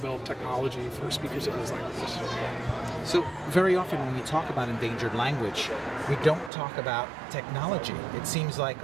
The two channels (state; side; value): drops out; left; at 6.5 s